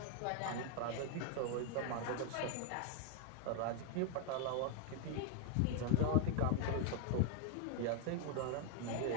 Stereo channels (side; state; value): both; different; correlation 0.00